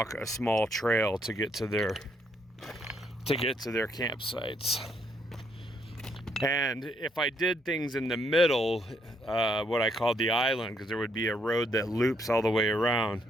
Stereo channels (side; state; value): both; normal; correlation 0.73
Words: a small trail to get to their campsites. And if I did things in the middle, what I called the island, because there would be a road that loops all the way around,